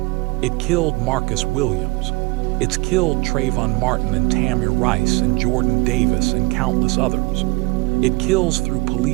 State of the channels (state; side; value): quieter; left; 25.3 dB